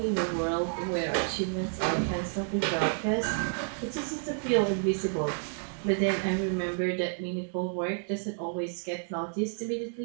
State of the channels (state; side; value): silent; left; digital silence